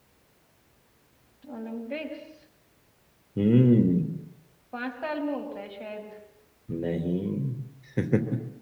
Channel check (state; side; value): identical; both; correlation 1.00